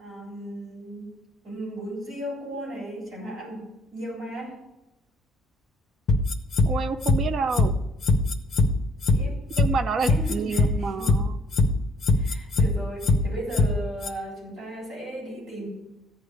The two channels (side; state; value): both; normal; correlation 0.61